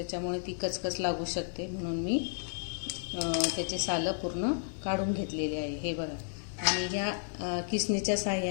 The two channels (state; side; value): silent; right; 56 dB below the other